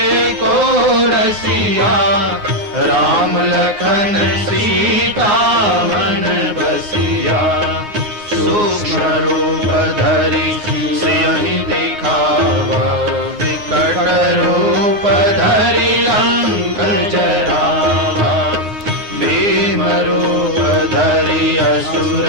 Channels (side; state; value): left; late; 9.6 ms